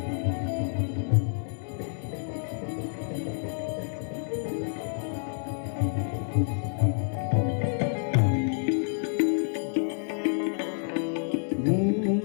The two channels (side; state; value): right; silent; digital silence